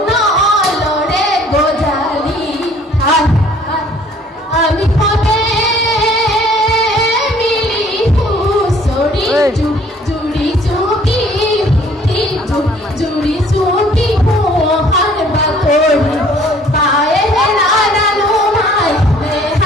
নলরে গোজালি আমি কবে মিলি হুসড়ি জুড়ি চুকি জুড়ি চুকি হার বাকড়ি পায়ে নাড়ানো মাই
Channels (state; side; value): normal; both; correlation 0.57